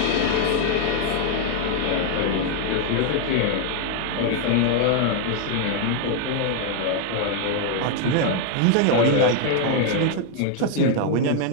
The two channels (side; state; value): both; different; correlation 0.00